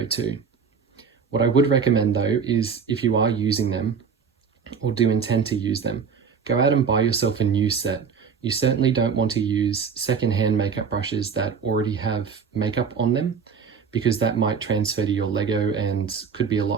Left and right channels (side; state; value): left; quieter; 6.1 dB